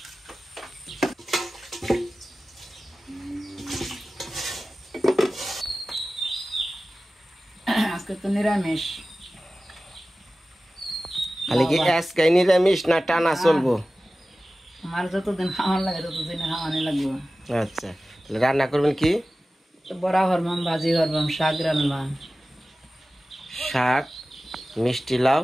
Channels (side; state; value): both; normal; correlation 0.96